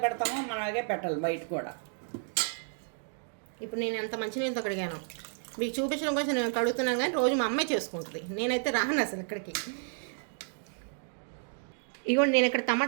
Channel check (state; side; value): silent; left; 57 dB below the other